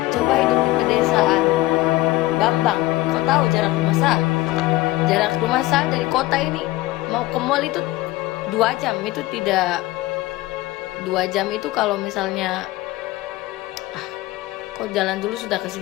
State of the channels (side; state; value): right; quieter; 18.4 dB